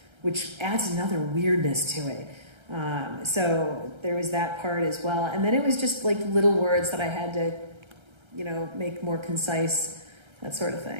which adds another weirdness to it. So there was that part as well. And then it was just like little words that I had to, make more concise, that sort of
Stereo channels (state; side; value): late; left; 1.3 ms